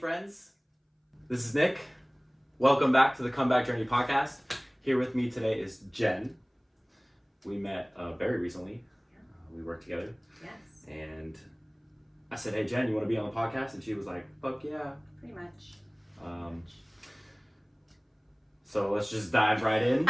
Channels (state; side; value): identical; both; correlation 1.00